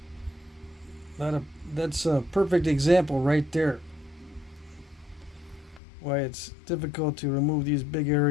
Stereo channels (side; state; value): right; drops out; at 5.8 s